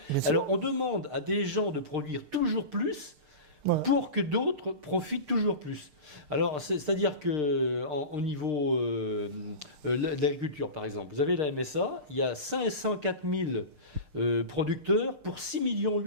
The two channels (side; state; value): left; late; 6.6 ms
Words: Alors on demande à des gens de produire toujours plus Voilà. pour que d'autres profitent toujours plus. Alors, c'est-à-dire qu'au niveau de l'agriculture, par exemple, vous avez la MSA, il y a 504 000 producteurs pour 6,8 millions